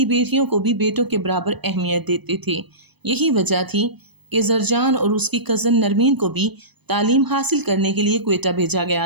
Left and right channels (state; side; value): late; left; 0.98 ms